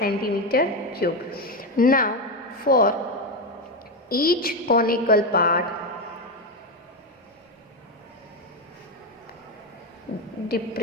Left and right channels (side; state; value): both; normal; correlation 0.11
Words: cube. Now for each conical part,